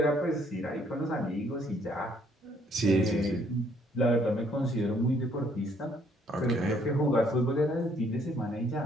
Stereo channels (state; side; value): normal; both; correlation 0.65